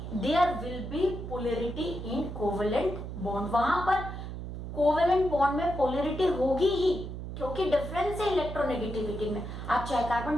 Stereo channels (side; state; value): right; noise; hum, 8 dB below the sound